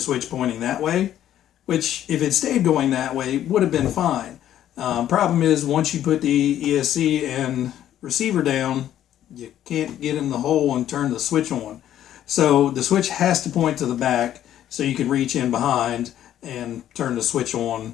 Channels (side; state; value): right; quieter; 11.5 dB